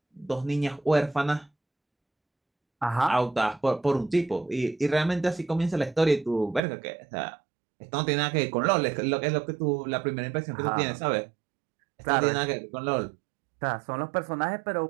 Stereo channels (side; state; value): left; drops out; at 6.6 s